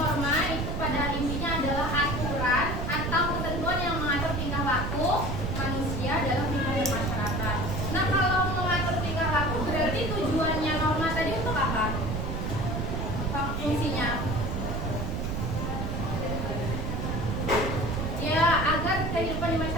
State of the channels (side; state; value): right; noise; rumble, 2 dB below the sound